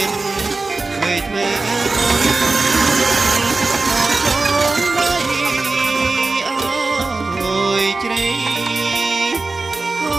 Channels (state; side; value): quieter; left; 3.6 dB